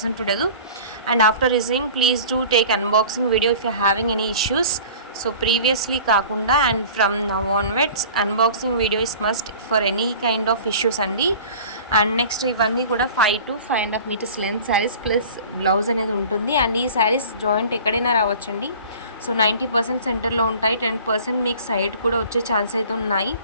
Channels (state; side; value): inverted; both; correlation -0.43